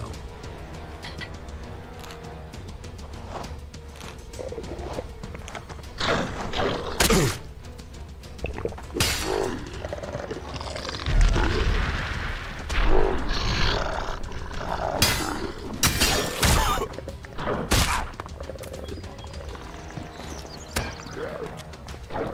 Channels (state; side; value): identical; both; correlation 1.00